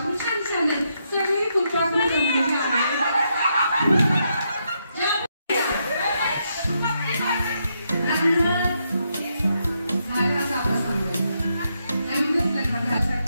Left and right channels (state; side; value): inverted; both; correlation -0.80